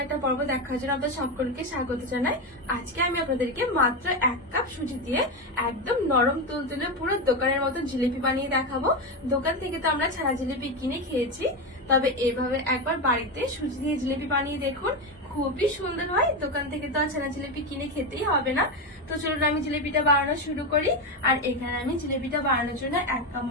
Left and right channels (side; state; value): both; normal; correlation 0.13